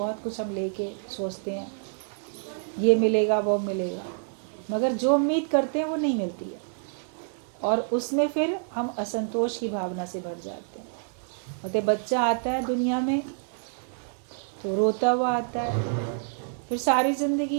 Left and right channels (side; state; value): left; silent; 60 dB below the other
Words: कुछ हम लेके सोचते हैं ये मिलेगा वो मिलेगा, मगर जो उम्मीद करते हैं वो नहीं मिलती है, और उसमें फिर हम असंतोष की भावना से भर जाते हैं। और बच्चा आता है दुनिया में तो रोता हुआ आता है, फिर सारी ज़िंदगी